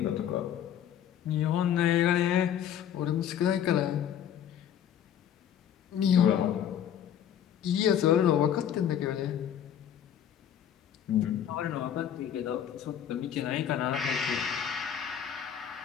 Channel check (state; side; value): quieter; right; 9.5 dB